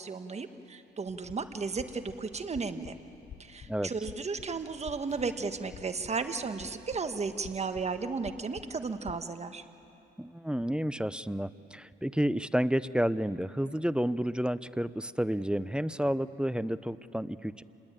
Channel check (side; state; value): both; normal; correlation 0.81